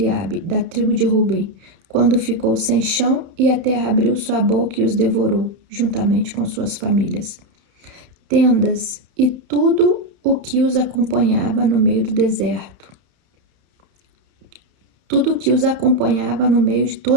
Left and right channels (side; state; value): left; late; 31 ms